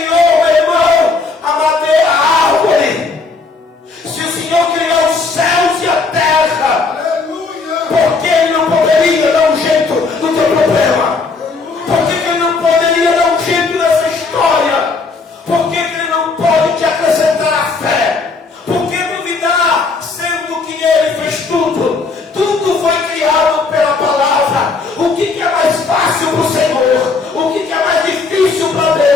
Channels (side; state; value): right; quieter; 4.2 dB